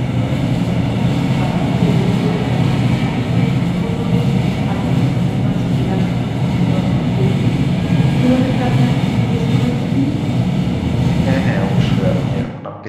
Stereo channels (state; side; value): identical; both; correlation 1.00